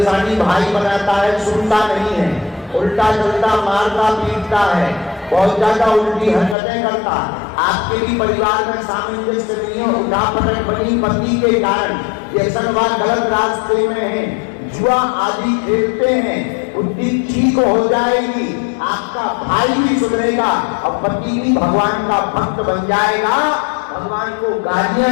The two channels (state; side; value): drops out; right; at 6.6 s